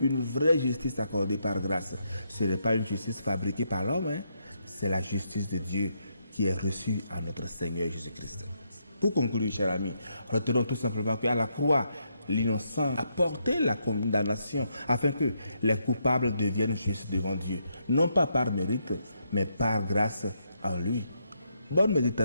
vraie justice accordée par grâce. Ce n'est pas une justice fabriquée par l'homme, c'est la justice de Dieu qui est reçue à notre Seigneur Jésus-Christ. Pour conclure, chers amis, retenons tout simplement qu'à la croix, l'innocent a porté la condamnation afin que les coupables deviennent justes devant Dieu, non pas par mérite, mais par grâce en lui. Bonne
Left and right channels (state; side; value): inverted; both; correlation -0.78